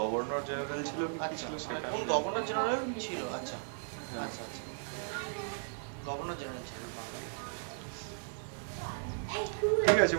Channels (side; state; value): left; silent; 54 dB below the other